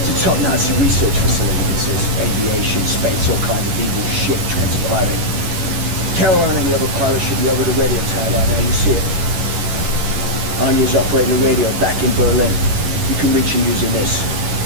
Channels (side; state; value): left; late; 11 ms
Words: a top Nazi research facility. This is aviation, space, all kinds of evil shit transpiring. Caroline and the other pilots should be over the radio tower by now. You see it. Anya's operating the radio back in Berlin. You can reach her using this.